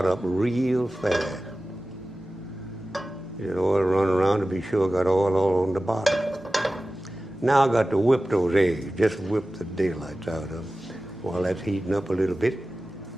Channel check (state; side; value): normal; both; correlation 0.96